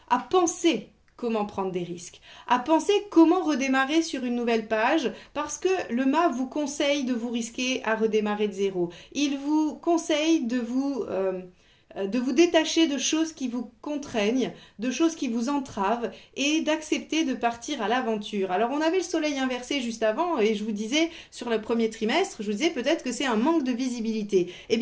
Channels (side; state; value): both; identical; correlation 1.00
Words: à penser comment prendre des risques, à penser comment redémarrer sur une nouvelle page, parce que le mât vous conseille de vous risquer à redémarrer de zéro. Il vous conseille de vous détacher de choses qui vous contraignent, de choses qui vous entravent et d'accepter de partir à l'aventure. Alors on avait le soleil inversé juste avant et je vous disais sur le premier trimestre, je vous disais peut-être que c'est un manque de visibilité. Eh